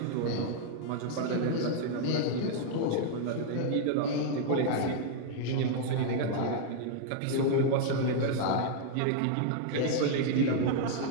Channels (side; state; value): both; different; correlation 0.00